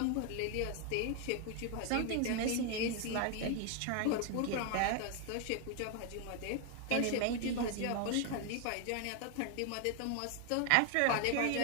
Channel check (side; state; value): both; different; correlation 0.00